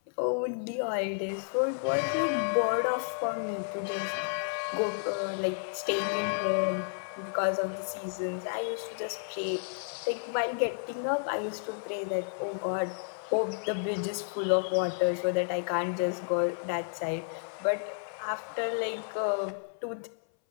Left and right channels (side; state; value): right; silent; 57 dB below the other